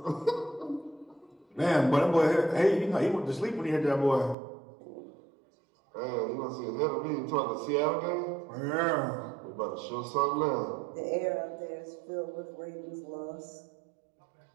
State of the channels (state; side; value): drops out; left; at 4.4 s